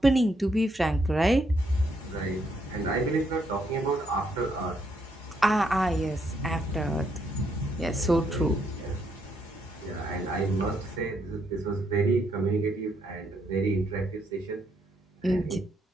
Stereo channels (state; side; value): normal; both; correlation 0.75